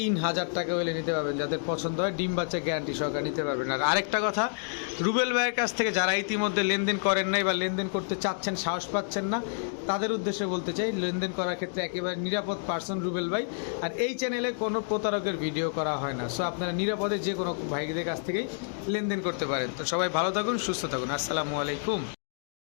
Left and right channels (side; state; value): right; silent; digital silence